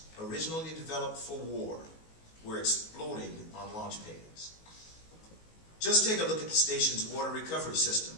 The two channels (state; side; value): late; right; 19 ms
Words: originally developed for war, were exploding on launch pads. Just take a look at the station's water recovery system,